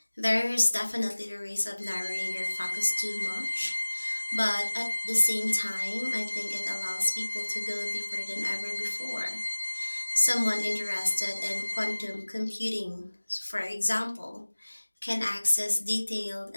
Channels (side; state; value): both; inverted; correlation -1.00